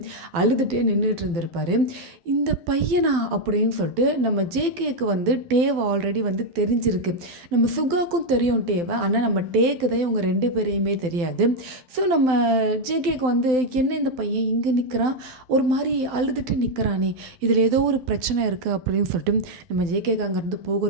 அழுதுகிட்டே நின்றுட்டு இருந்திருப்பாரு. இந்த பையனா அப்படின்னு சொல்லிட்டு நம்ம ஜேகேக்கு வந்து டேவை ஆல்ரெடி வந்து தெரிஞ்சிருக்கு. நம்ம சுகாக்கும் தெரியும் டேவை, ஆனால் நம்ம டேக்கு தான் இவங்க 2 பேரையுமே தெரியாது. ஸோ நம்ம ஜேகேக்கு வந்து என்ன இந்த பையன் இங்கே நிற்கிறான், ஒரு மாதிரி அழுதுட்டு நிற்கிறானே, இதில் ஏதோ ஒரு பிரச்சனை இருக்குது அப்படின்னு சொல்லிட்டு நம்ம ஜேகேக்கு அங்கேருந்து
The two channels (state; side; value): late; left; 12 ms